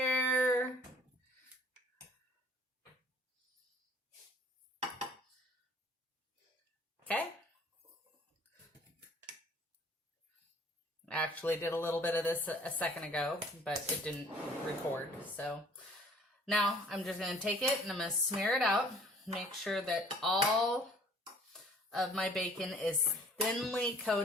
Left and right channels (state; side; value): normal; both; correlation 0.54